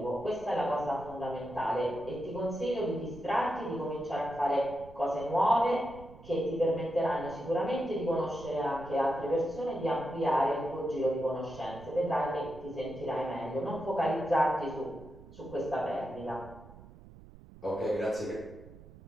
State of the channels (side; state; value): right; noise; rumble, 19 dB below the sound